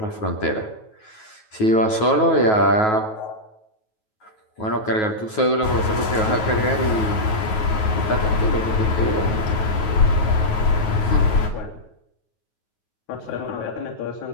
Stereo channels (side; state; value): right; late; 9.3 ms